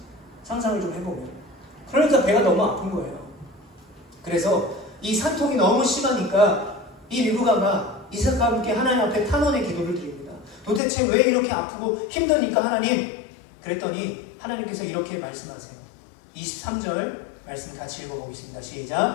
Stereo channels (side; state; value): right; drops out; at 10.8 s